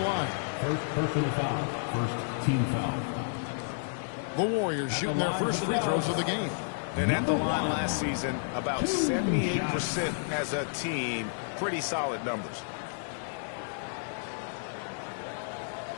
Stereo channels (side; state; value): right; silent; digital silence